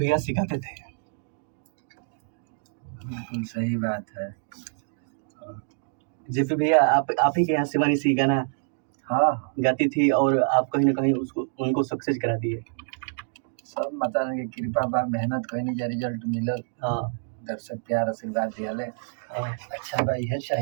सिखाते थे। बिल्कुल सही बात है। जेपी भैया आप ही के यहाँ शिवानी सिंह गाना हाँ गाती थी और आप कहीं ना कहीं उनको सक्सेस करा दिए। सब माता की कृपा बा, मेहनत कहीं जा रिजल्ट मिलल। हाँ, दर्शक प्यार आशीर्वाद दियाले। हाँ, अच्छा बा, यह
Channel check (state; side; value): silent; left; digital silence